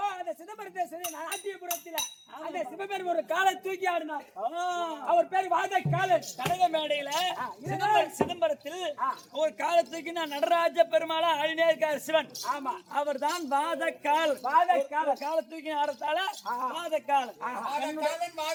அந்த சிதம்பரத்தை நாட்டியபுரத்தில் அந்த சிவபெருமான் ஒரு காலை தூக்கி ஆடினார். அவர் பேர் வாத காலன். கனக மேடையில சிதம்பரத்தில் ஒரு காலத்துக்கு நான் நடராஜ பெருமாளா ஆடினே இருக்கார் சிவன். ஆமா, அவர் தான் வாதக்கால். காலத்துக்கு ஆடத்தால வாதக்கால்.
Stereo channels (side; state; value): both; identical; correlation 1.00